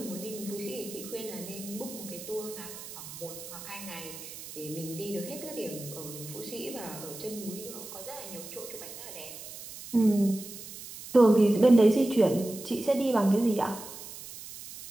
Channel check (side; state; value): right; noise; hiss, 13 dB below the sound